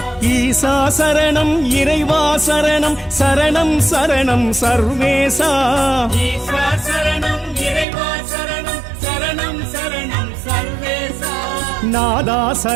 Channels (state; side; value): drops out; left; at 7.9 s